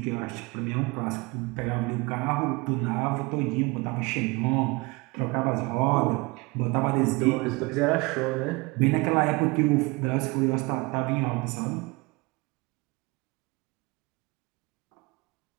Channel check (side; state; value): left; quieter; 25.4 dB